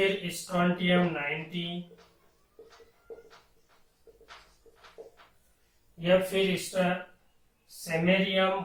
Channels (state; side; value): identical; both; correlation 1.00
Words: स्ट्रोंटियम 90 या फिर सेमेरियम